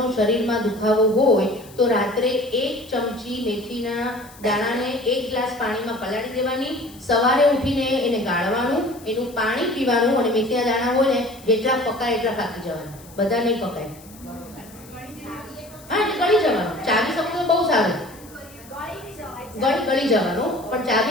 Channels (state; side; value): noise; left; hiss, 22 dB below the sound